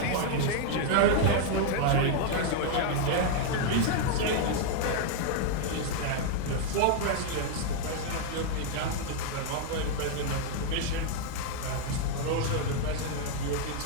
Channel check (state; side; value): different; both; correlation 0.00